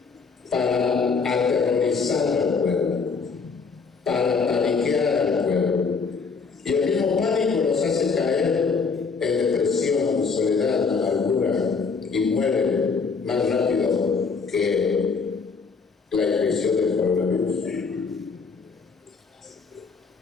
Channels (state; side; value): quieter; right; 5.1 dB